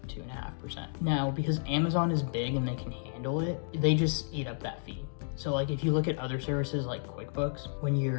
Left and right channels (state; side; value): silent; right; digital silence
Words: 2.5%. Now, because Amazon is big and they can handle it, they just eat up that fee. So like if you look at other services like QuickBooks, when